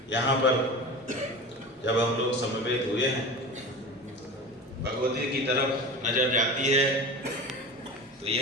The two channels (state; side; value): normal; both; correlation 0.31